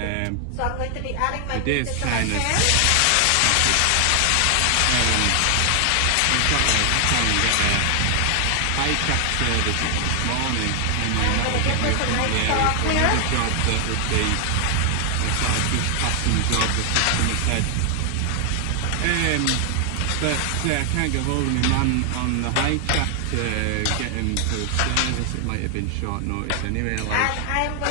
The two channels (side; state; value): both; different; correlation 0.00